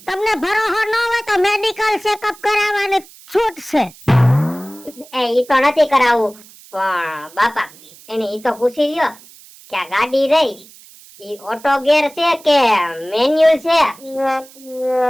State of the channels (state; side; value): noise; right; hiss, 23 dB below the sound